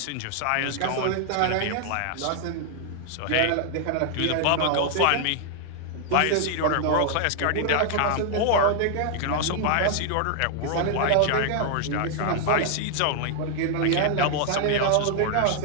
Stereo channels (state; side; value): different; both; correlation 0.00